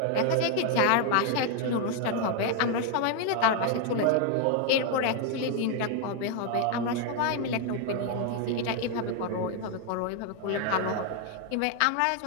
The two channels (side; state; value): both; different; correlation 0.00